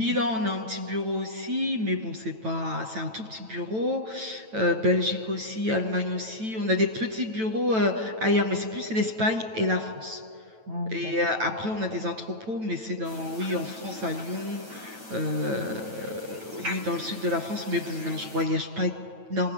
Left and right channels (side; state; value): left; late; 9.1 ms